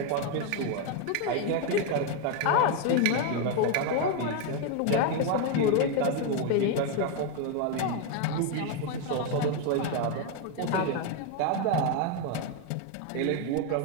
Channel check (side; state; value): both; different; correlation 0.01